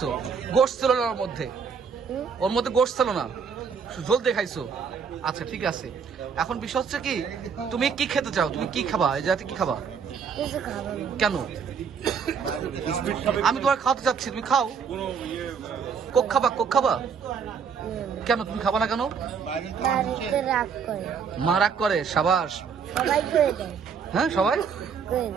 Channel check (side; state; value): left; quieter; 6.4 dB